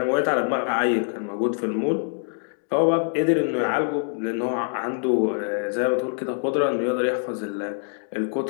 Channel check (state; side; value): silent; right; 62 dB below the other